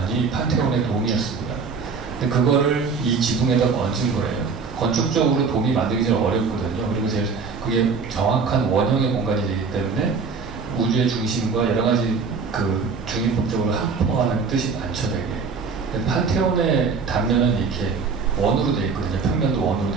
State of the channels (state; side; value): quieter; left; 5.1 dB